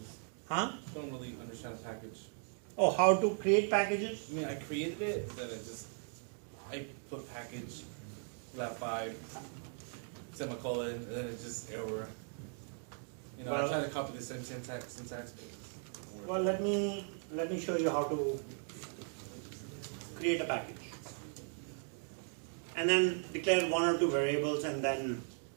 Huh? Don't really understand a package. Oh, how to create packages? I mean, I created it, and then I put package, lab 5, semicolon, and then it just error. You know, Well- I try to copy the same syntax, but it doesn't work. Well, let me show you how to create a package. And then declare 1 or 2 variables, and then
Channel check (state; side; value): silent; left; 52 dB below the other